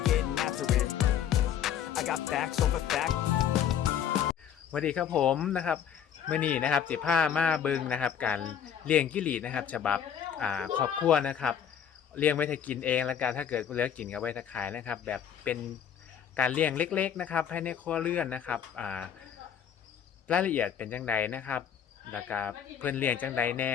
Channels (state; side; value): quieter; right; 8.8 dB